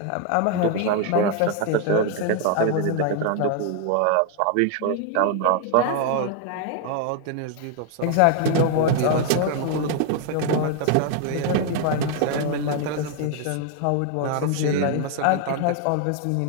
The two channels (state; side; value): different; both; correlation 0.00